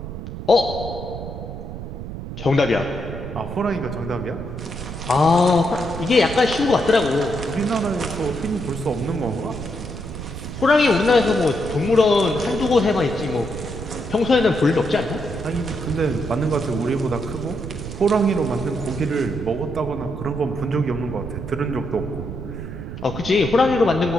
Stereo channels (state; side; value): noise; right; rumble, 9 dB below the sound